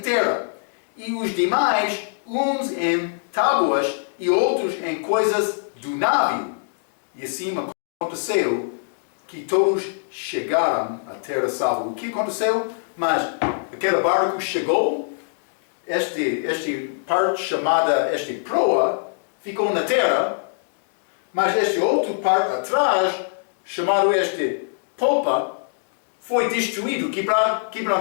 E os demais, uns em tábuas e outros em coisas do navio. E assim aconteceu que todos chegaram à terra salva. O que aconteceu? Mas aquele barco chegou, este parte chamada proa, ficou na terra, mas este outro parte atrás, chamado popa, foi destruído,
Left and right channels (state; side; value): silent; right; digital silence